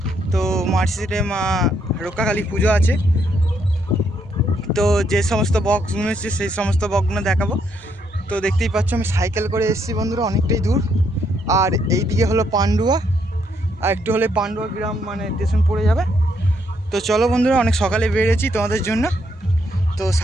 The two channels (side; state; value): both; normal; correlation 0.74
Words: তো মার্কশিটে মা রক্ষাকালী পুজো আছে। তো যে সমস্ত বক্সগুলো এসেছে সেই সমস্ত বক্সগুলো দেখাবো। তো দেখতেই পাচ্ছ আমি সাইকেল করে এসেছি বন্ধুরা, অনেকটাই দূর। আর এই দিকে হলো পান্ডুয়া, আর একটু হলে পান্ডুয়া গ্রাম মানে স্টেশন পড়ে যাবে। তো চলো বন্ধুরা, অনেক সকালে বেরিয়েছি তোমাদের জন্য। তো